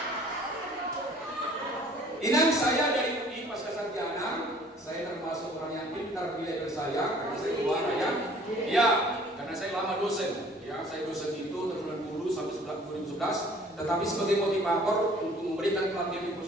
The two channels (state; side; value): normal; both; correlation 0.53